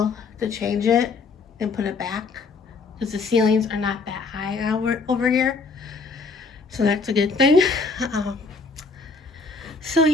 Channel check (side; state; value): right; quieter; 4.3 dB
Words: to change it and put it back, because the ceilings are not that high over here. So that's a good thing. So